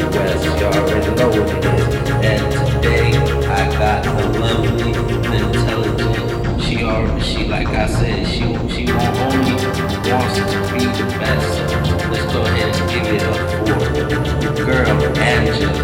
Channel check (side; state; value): both; identical; correlation 1.00